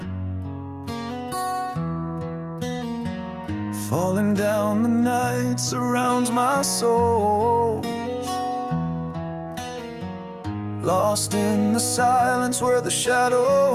Falling down the night surrounds my soul, lost in the silence where the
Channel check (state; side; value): identical; both; correlation 1.00